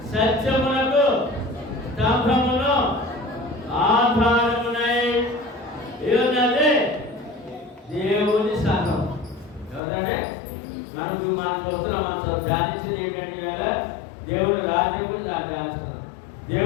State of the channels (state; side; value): drops out; right; at 9.8 s